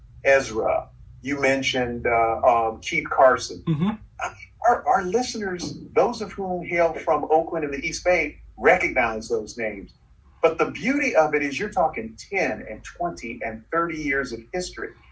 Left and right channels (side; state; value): both; identical; correlation 1.00